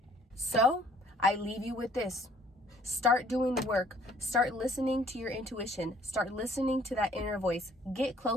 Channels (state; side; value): normal; both; correlation 0.59